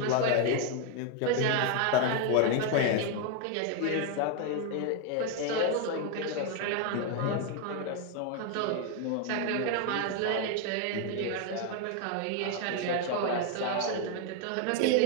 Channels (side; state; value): both; different; correlation 0.01